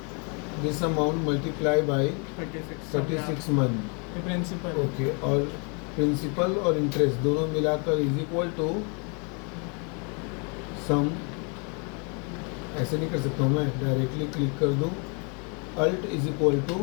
this amount multiply by 36 month, principal. Okay. और प्रिंसिपल और इंटरेस्ट दोनों मिलाकर इज इक्वल टू सम। ऐसे नहीं कर सकता हूँ मैं, डायरेक्टली क्लिक कर दूँ, alt is equal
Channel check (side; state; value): right; quieter; 35.3 dB